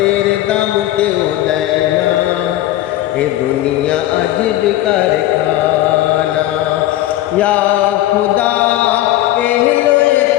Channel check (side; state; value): right; quieter; 14.7 dB